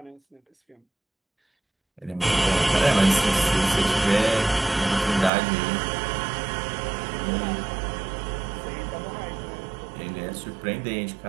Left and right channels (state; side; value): drops out; left; at 5.3 s